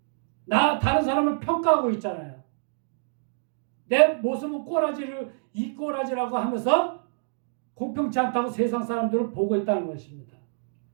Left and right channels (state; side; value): silent; left; digital silence